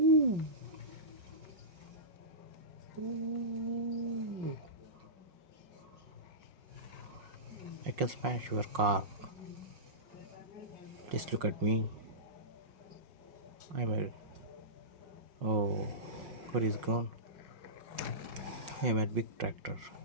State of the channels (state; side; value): late; left; 5.6 ms